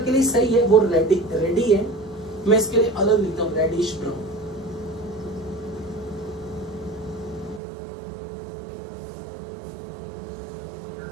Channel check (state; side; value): drops out; left; at 7.6 s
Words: लिए सही है, वो रेडी है। मैं इसके लिए अलग लिखता हूं, रेडिश ब्राउन।